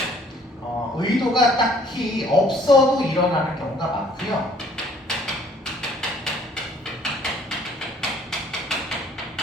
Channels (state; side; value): normal; both; correlation 0.58